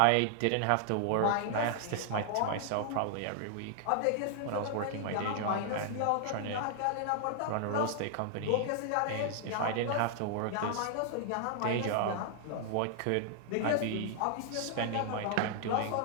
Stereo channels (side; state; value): both; different; correlation 0.00